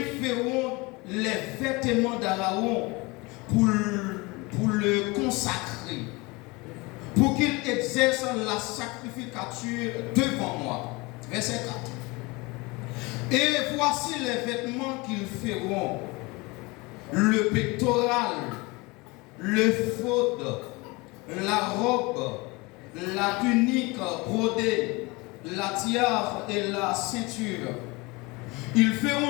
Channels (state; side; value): quieter; right; 25.0 dB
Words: feront les vêtements d'Aaron pour le consacrer, pour qu'il exerce la sacrificature devant moi. Verset 4. Et voici les vêtements qu'ils feront: le pectoral, le faute, la robe, la tunique brodée, la tiare et la ceinture. Ils